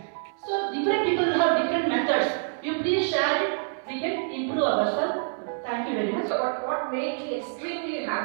So different people have different methods. You please share it. We can improve ourselves. Thank you very much. But what made me extremely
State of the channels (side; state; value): left; silent; 60 dB below the other